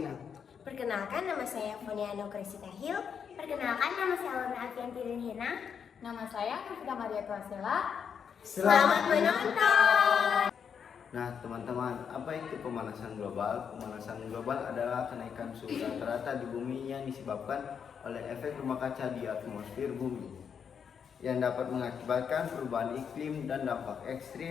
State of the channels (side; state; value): right; quieter; 7.2 dB